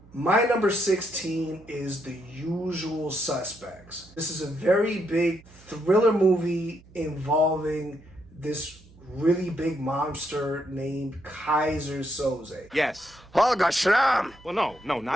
My number 16 is The Usual Suspects. This is a very big thriller movie involving this really big monster named Kaiser Soze. Yes. Holger Schramm! Well, no, not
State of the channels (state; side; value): noise; right; hum, 25 dB below the sound